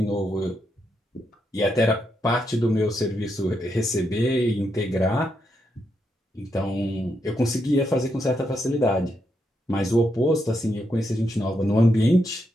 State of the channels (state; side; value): normal; both; correlation 0.81